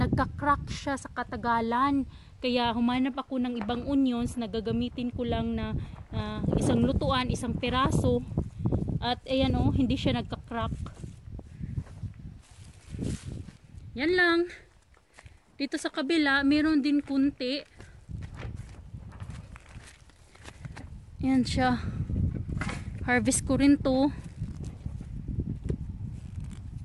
siya sa katagalan. Kaya humanap ako ng ibang onions na gagamitin ko lang na isang lutuan, isang piraso. At ayan o, hindi siya nagka-crack. Yan lang. Dito sa kabila, meron din kunti. Yan siya. Harvest ko rin to.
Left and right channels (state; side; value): identical; both; correlation 1.00